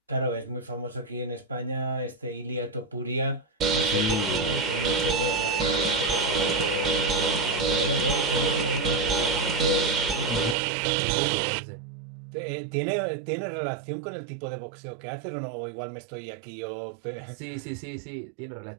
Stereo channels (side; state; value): left; drops out; at 10.6 s